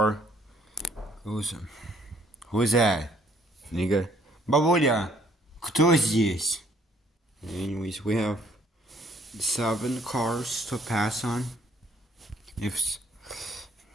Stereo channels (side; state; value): both; normal; correlation 0.64